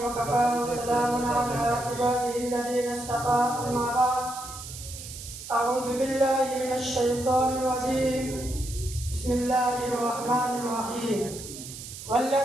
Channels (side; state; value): right; noise; hiss, 12 dB below the sound